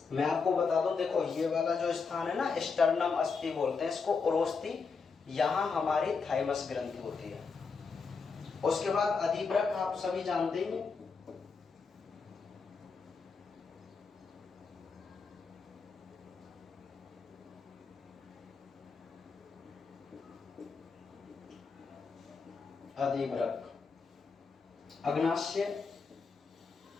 मैं आपको बता दूं, देखो ये वाला जो स्थान है ना, स्टर्नम अस्थि बोलते हैं इसको, उरोस्थि, यहां हमारी थाइमस ग्रंथि होती है। उसके बाद अधिवृक्क आप सभी जानते ही हैं, अधिवृक्क, अग्नाशय,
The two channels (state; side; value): quieter; right; 5.0 dB